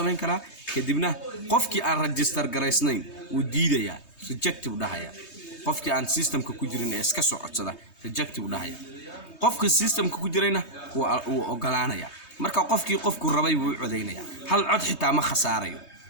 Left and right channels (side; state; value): right; late; 3.2 ms